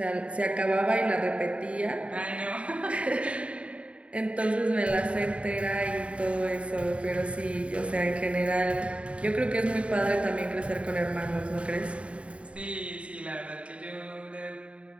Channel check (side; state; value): left; late; 0.062 ms